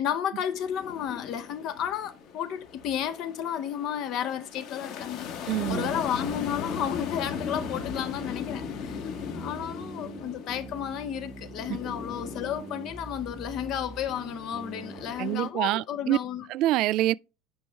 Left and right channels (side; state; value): both; normal; correlation 0.36